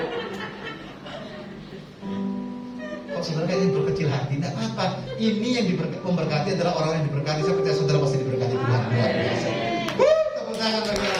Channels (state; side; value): identical; both; correlation 1.00